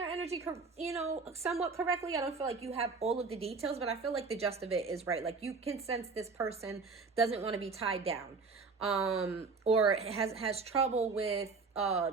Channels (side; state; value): left; quieter; 4.4 dB